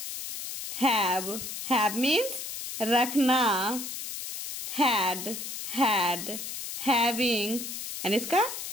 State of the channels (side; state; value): left; noise; hiss, 7 dB below the sound